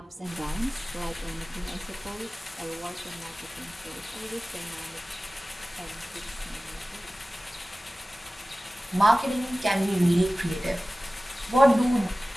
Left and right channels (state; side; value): normal; both; correlation 0.97